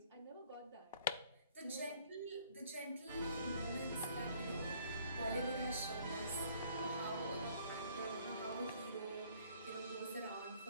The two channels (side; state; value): both; inverted; correlation -0.60